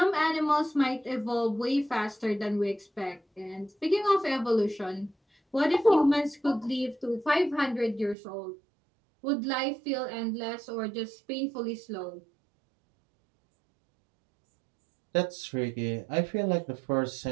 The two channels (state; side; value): drops out; left; at 8.2 s